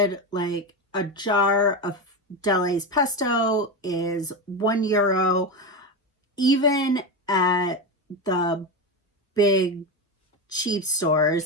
Like a jar of Delays pesto is €1. Even at the big cheap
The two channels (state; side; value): normal; both; correlation 0.16